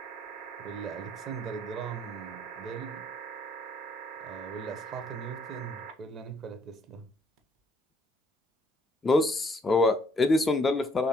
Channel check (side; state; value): both; normal; correlation 0.66